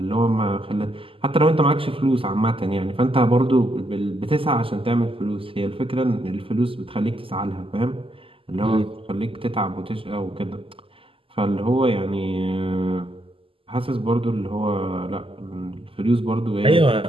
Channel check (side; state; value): left; late; 0.26 ms